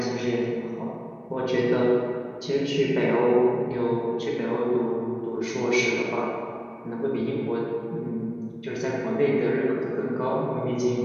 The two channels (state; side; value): identical; both; correlation 1.00